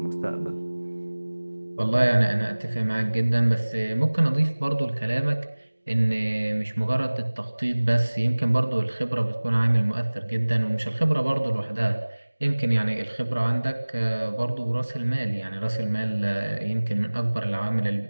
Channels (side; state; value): both; inverted; correlation -1.00